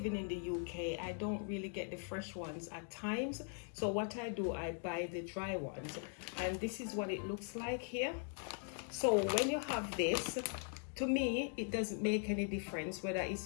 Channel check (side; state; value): right; silent; 51 dB below the other